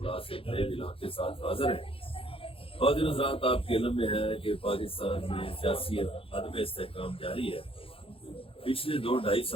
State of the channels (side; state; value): right; late; 0.27 ms